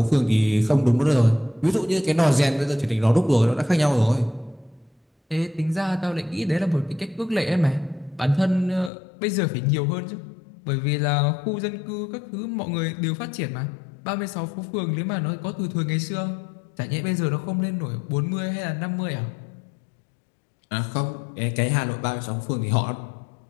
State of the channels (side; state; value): right; drops out; at 8.9 s